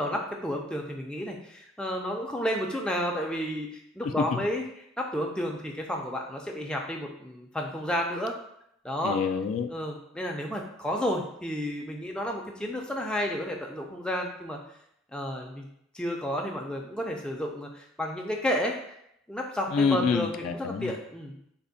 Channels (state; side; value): normal; both; correlation 0.60